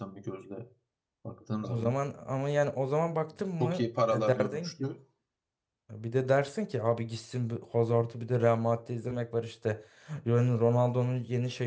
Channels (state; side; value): identical; both; correlation 1.00